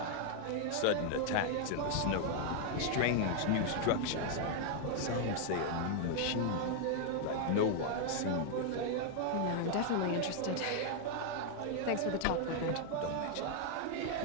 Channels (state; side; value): different; both; correlation 0.00